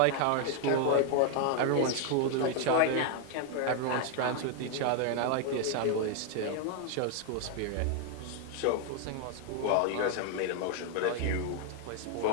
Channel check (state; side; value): different; both; correlation 0.00